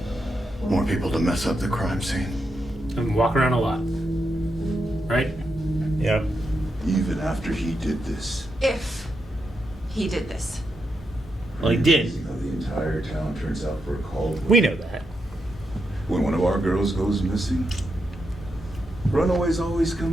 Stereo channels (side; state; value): both; normal; correlation 0.84